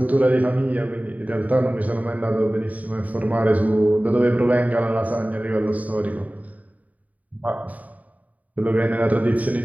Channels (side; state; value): left; late; 0.072 ms